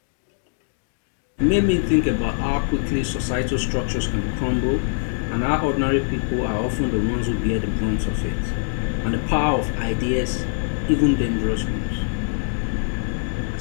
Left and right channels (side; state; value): right; silent; digital silence